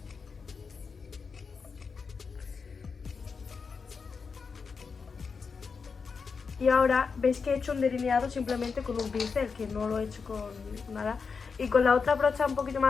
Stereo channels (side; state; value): right; quieter; 5.3 dB